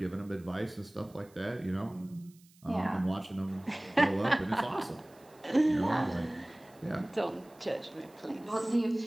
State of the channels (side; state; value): right; noise; hiss, 28 dB below the sound